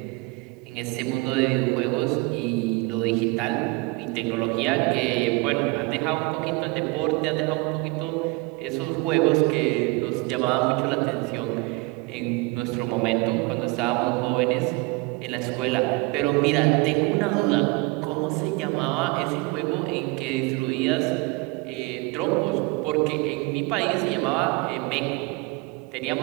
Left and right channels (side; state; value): left; quieter; 25.1 dB